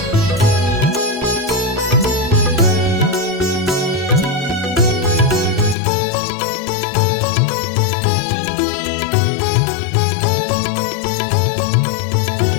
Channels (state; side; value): drops out; right; at 5.8 s